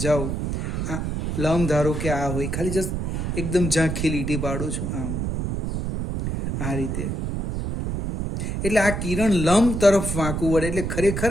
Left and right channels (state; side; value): noise; right; rumble, 2 dB below the sound